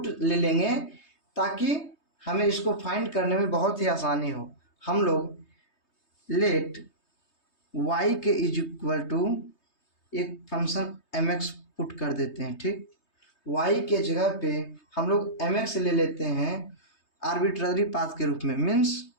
ले लेंगे ताकि हमें इसको फाइंड करने में बहुत ही आसानी हो। हम लोग लेट y के इज इक्वल टू एक फंक्शन mx पुट कर देते हैं। ठीक, y के जगह पे हम लोग mx ले लेते हैं आर्बिट्ररी पाथ के रूप में। मीन्स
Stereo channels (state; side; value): late; right; 3.2 ms